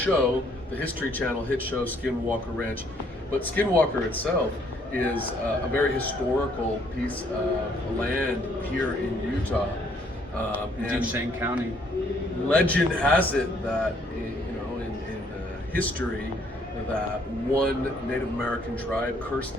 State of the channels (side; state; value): both; normal; correlation 0.66